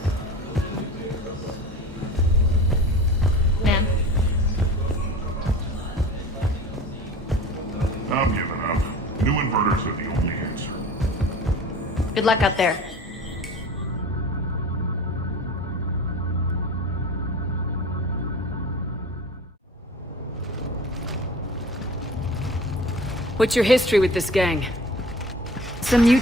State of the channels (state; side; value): normal; both; correlation 0.40